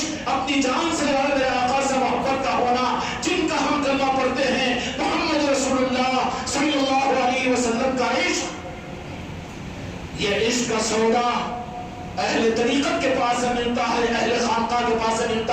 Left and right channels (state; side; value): identical; both; correlation 1.00